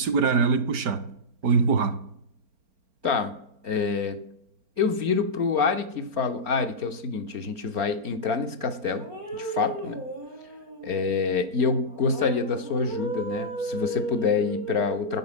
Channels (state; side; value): late; left; 4.3 ms